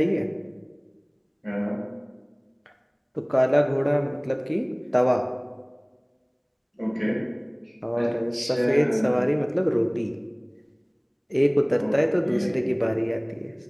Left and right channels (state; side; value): identical; both; correlation 1.00